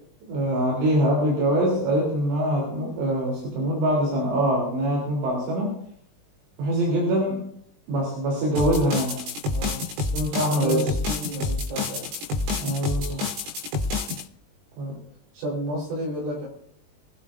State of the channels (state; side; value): late; left; 20 ms